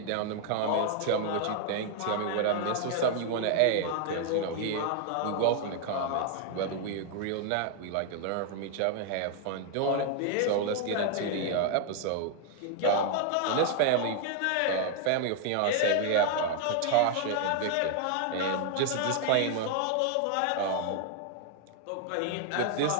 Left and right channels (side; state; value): both; different; correlation 0.00